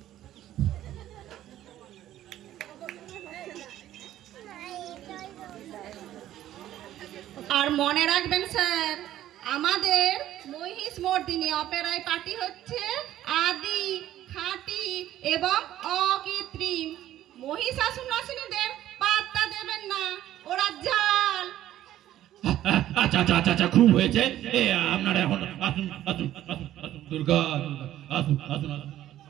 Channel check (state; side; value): quieter; left; 12.9 dB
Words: মনে রাখবেন স্যার, আমাদের মহিষ মর্দিনী অপেরায় পার্টি হচ্ছে আদি, খাঁটি এবং অকৃত্রিম। মহিষাসুর নাসিনীদের পাত্তা দেবেন না, ওরা জাল। আচ্ছা আচ্ছা আচ্ছা আচ্ছা, খুব হয়েছে। আপনারা এখন আসুন আসুন আসুন আসুন, দুর্গা আসুন আসুন আসুন,